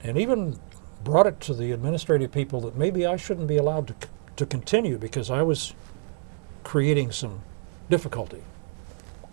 and even brought it to the administrative people that maybe I shouldn't be allowed to continue because I was creating some difficulty.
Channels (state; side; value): silent; left; 60 dB below the other